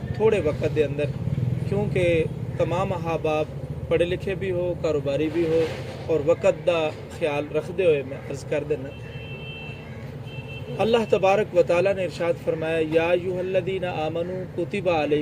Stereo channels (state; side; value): identical; both; correlation 1.00